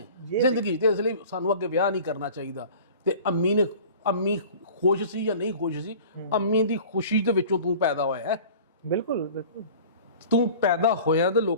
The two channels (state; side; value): inverted; both; correlation -0.43